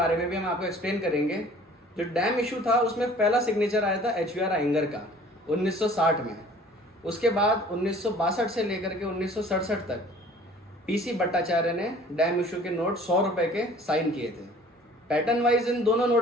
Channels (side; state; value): both; normal; correlation 0.50